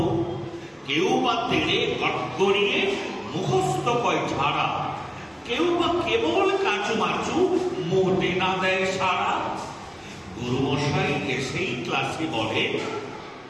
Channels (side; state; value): both; identical; correlation 1.00